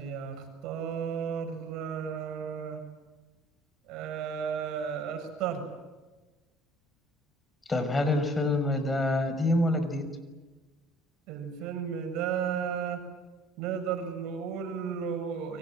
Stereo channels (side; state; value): both; normal; correlation 0.52